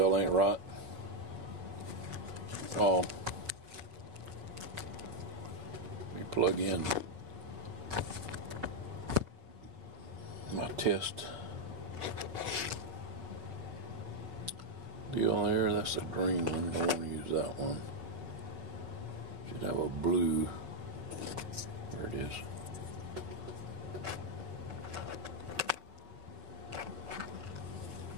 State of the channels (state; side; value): late; left; 5.7 ms